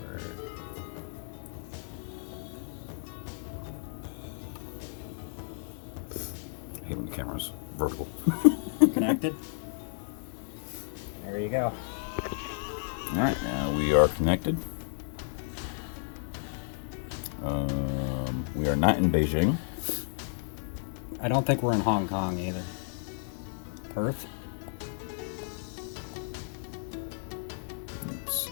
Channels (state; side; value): silent; right; 56 dB below the other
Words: I hate when the camera's vertical. Connected? There you go. Alright, now we are connected. We are not in Beijing. I don't think we're in Hong Kong either. Perth? Let's see,